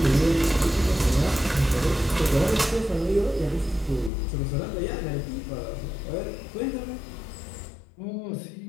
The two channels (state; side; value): drops out; right; at 4.1 s